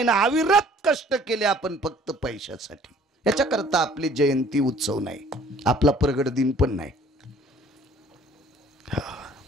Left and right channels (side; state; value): both; normal; correlation 0.55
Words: ना, अविरत कष्ट केले आपण फक्त पैशासाठी. याच्याकरता आपली जयंती उत्सव नाही, आपला प्रगट दिन पण नाही.